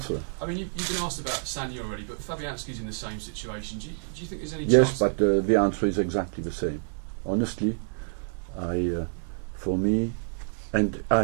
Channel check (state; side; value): silent; left; 59 dB below the other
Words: I mean, you've been asked about Sanya already, but Fabianski's in the same situation. Do you think there's any Yes, chance? but the answer is exactly the same. Honestly, for me, and I